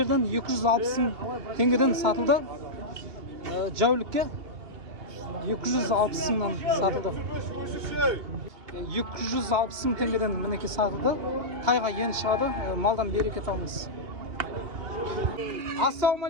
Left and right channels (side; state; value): left; late; 2.8 ms